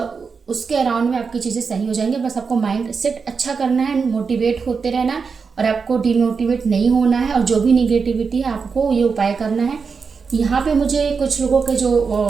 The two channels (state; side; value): quieter; left; 5.3 dB